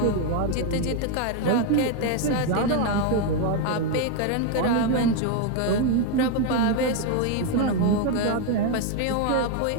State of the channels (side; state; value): both; different; correlation 0.01